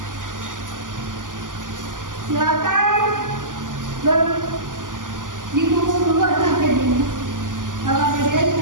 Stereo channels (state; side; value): late; left; 0.88 ms